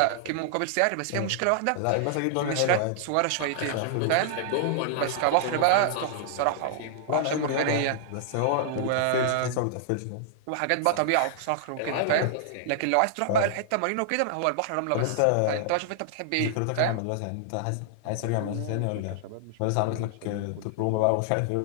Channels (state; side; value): different; both; correlation -0.01